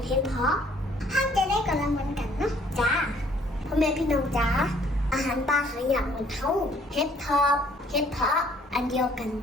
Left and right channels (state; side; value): normal; both; correlation 0.61